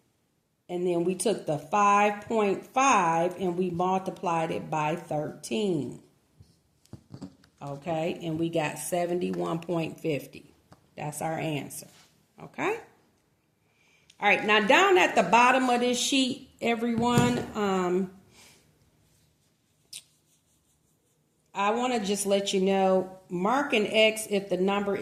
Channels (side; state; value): both; identical; correlation 1.00